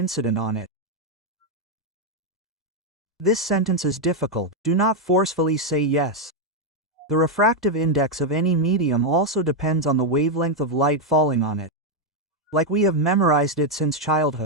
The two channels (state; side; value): normal; both; correlation 0.02